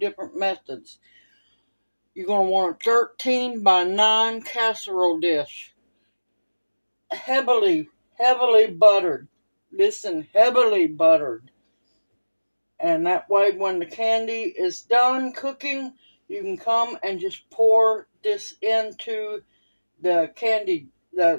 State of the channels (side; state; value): both; inverted; correlation -1.00